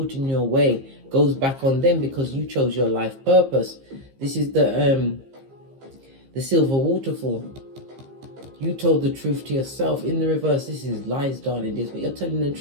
your way goes back on them because you chose your life purpose. This is the silver waterfall. You told the truth to yourself. In the reverse, this is lies, darling dears, but you're telling the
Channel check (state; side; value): late; left; 15 ms